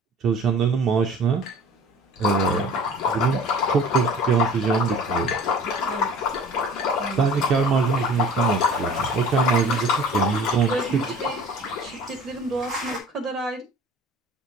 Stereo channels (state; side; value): normal; both; correlation 0.45